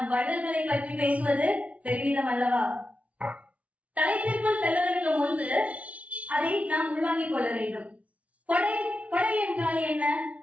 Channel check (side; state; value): left; late; 0.066 ms